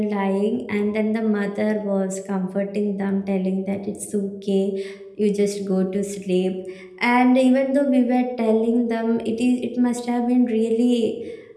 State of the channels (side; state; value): both; identical; correlation 1.00